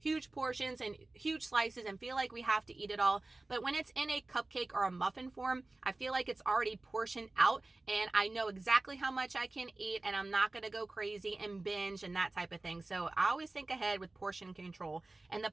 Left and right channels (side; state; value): left; quieter; 3.1 dB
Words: portions and huge slices and feel like we have to eat it all. But when it's in a cupcake or a muffin form, I feel like it's already portioned out and I know exactly how much I can eat and I'm not going to go crazy and binge and that type of thing. So I always think ahead with portion control. And the